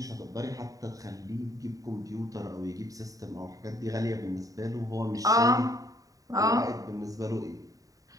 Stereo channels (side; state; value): left; late; 0.17 ms